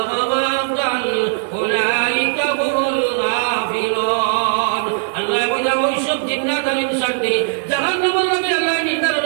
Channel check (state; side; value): silent; left; digital silence